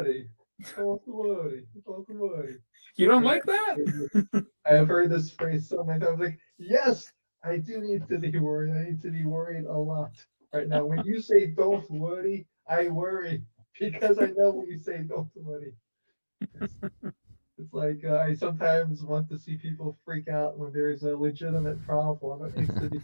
Don't worry. Don't worry. You don't like that? I have heard this phrase so many times. Like, yes, I do need to be worried. I need to be worried a lot right now. When you say "don't worry," I worry because I know when you say "don't worry." It's like I sometimes want to see people freak out when there's a legitimate problem that needs to be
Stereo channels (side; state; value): both; inverted; correlation -1.00